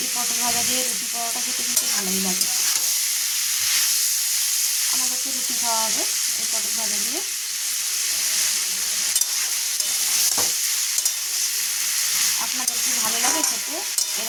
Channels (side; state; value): both; identical; correlation 1.00